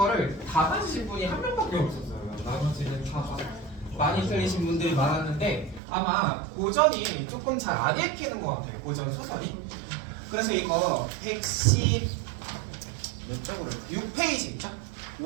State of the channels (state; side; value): drops out; left; at 5.8 s